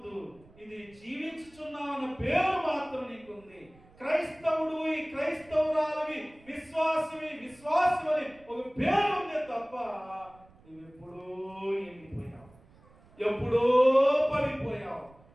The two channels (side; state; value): right; noise; rumble, 27 dB below the sound